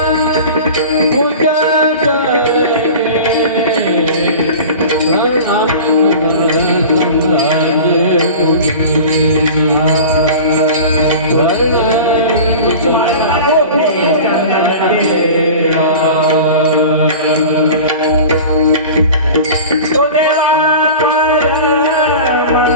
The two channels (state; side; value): inverted; both; correlation -0.36